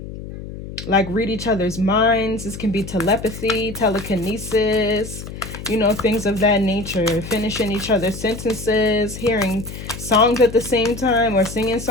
like read each other's minds. This can be telepathy, telekinesis, you know, things of that nature. Finishing each other's sentences, hearing songs at the same time, or singing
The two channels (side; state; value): left; noise; hum, 11 dB below the sound